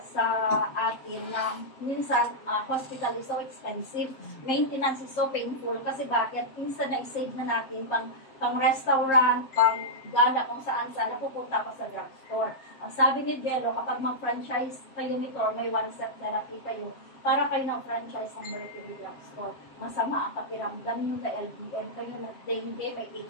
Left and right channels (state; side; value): late; right; 7.5 ms